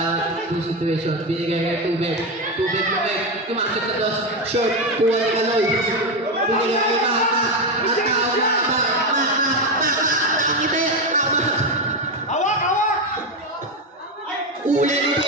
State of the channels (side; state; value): both; normal; correlation 0.11